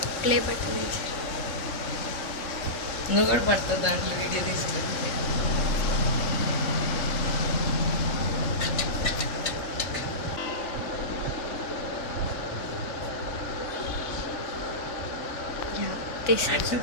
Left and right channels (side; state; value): right; late; 3.6 ms